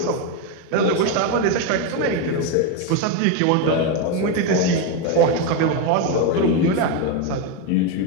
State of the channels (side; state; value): both; different; correlation 0.03